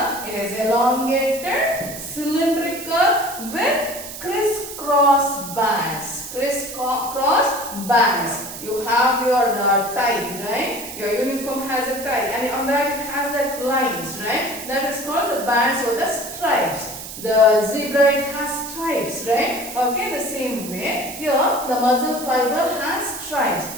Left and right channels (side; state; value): right; noise; hiss, 11 dB below the sound